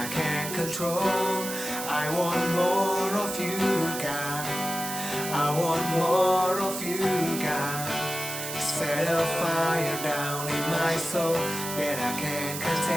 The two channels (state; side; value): noise; right; hiss, 6 dB below the sound